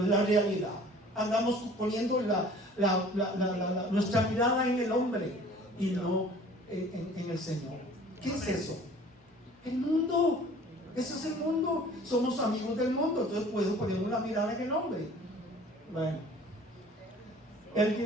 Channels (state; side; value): normal; both; correlation 0.49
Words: es la realidad. Andamos poniendo nuestra mirada en el hombre y no en el Señor. ¿Qué es eso? El mundo. Eso es el mundo. Somos amigos del mundo, entonces puedo poner una mirada en el hombre. Bueno. El